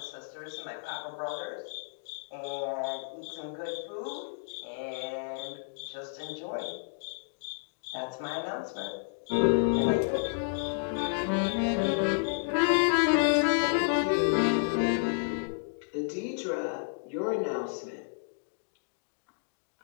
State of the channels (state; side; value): silent; right; digital silence